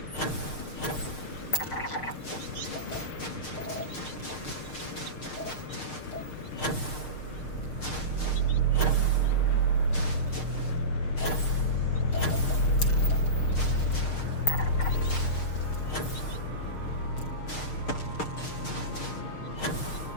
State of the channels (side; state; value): right; late; 6.6 ms